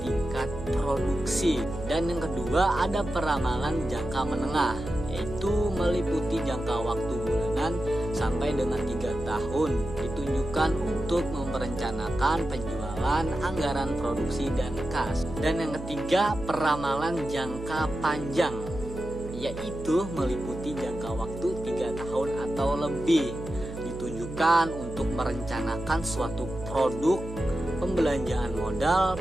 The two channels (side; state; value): right; noise; hum, 11 dB below the sound